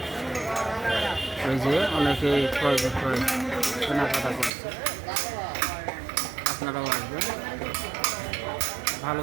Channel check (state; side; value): drops out; left; at 4.5 s